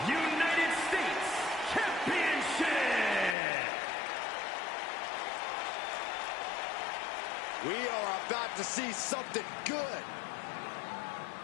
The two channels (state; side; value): drops out; right; at 3.4 s